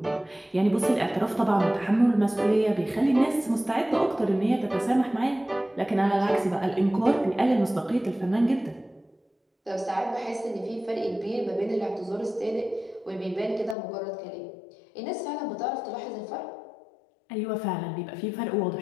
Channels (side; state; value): right; drops out; at 13.8 s